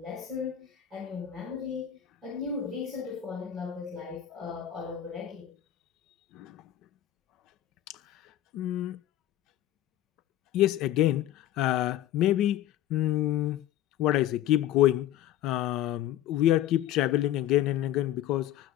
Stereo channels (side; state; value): right; quieter; 12.5 dB